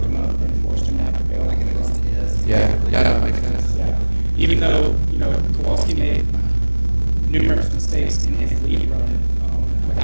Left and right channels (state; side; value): inverted; both; correlation -1.00